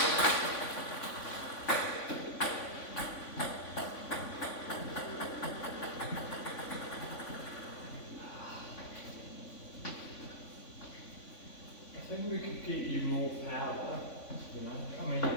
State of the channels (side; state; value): right; late; 3.5 ms